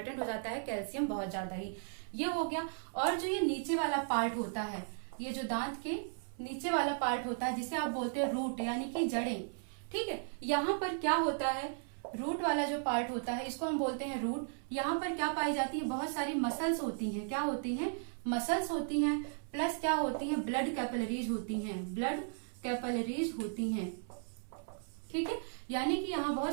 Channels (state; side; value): silent; left; 54 dB below the other